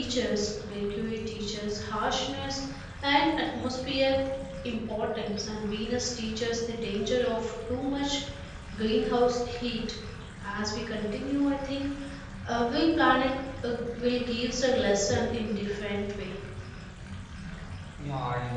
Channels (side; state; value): both; identical; correlation 1.00